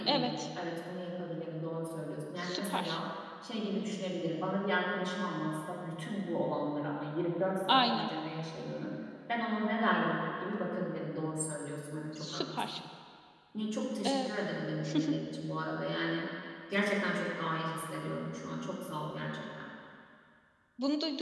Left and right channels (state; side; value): identical; both; correlation 1.00